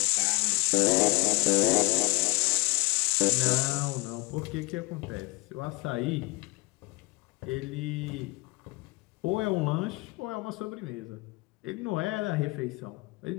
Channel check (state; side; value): quieter; right; 25.2 dB